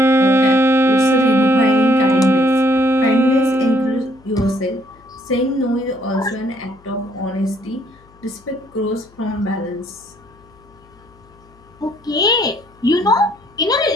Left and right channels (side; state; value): left; noise; hum, 28 dB below the sound